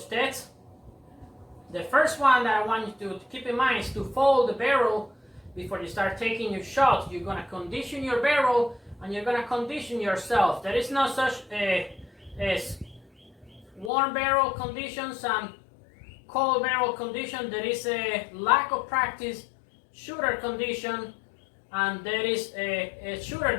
tests. The first one that I want you to keep in mind is to fold the barrel before you start taking your shots. You're going to condition your barrel and you're going to condition yourself. There is no such as warm barrel conditions and cold barrel condition. There is a lack of practice shooter condition, and there is a shooter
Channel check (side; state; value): right; drops out; at 13.9 s